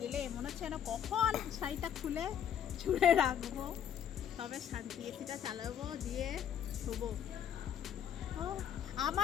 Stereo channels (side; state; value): right; quieter; 9.2 dB